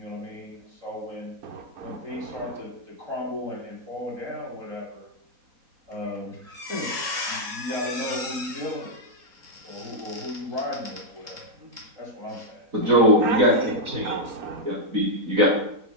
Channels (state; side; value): late; left; 3.7 ms